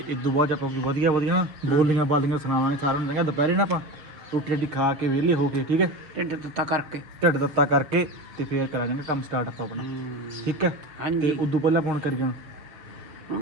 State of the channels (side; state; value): left; late; 6.5 ms